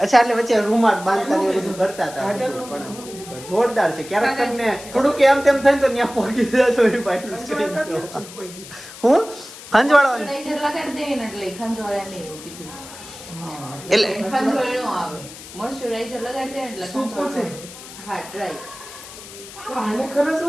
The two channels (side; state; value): left; noise; hiss, 15 dB below the sound